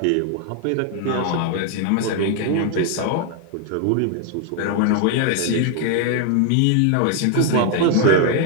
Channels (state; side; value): different; both; correlation 0.00